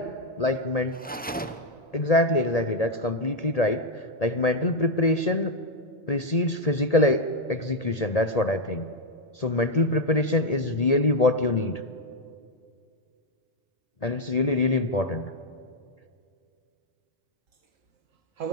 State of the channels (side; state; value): both; normal; correlation 0.02